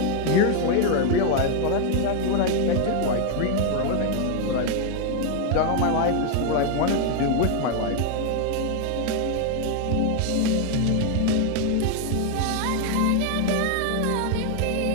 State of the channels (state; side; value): different; both; correlation 0.00